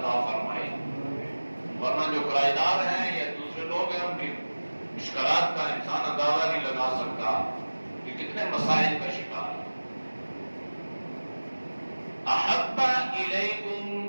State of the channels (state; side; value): inverted; both; correlation -1.00